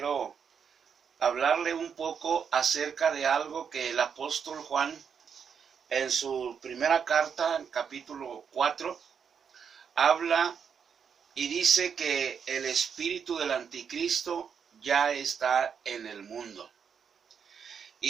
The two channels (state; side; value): quieter; left; 7.0 dB